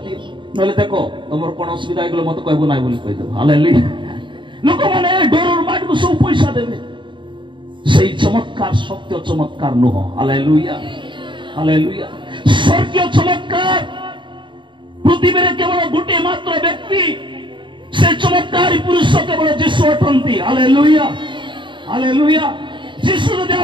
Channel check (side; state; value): left; late; 0.23 ms